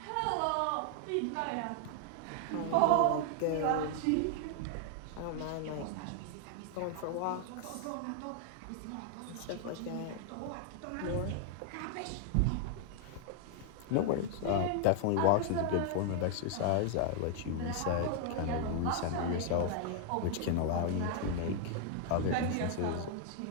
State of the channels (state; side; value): different; both; correlation 0.00